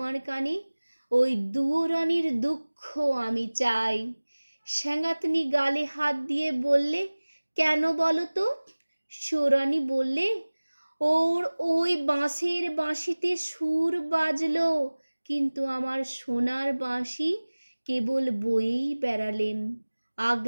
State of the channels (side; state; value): both; inverted; correlation -1.00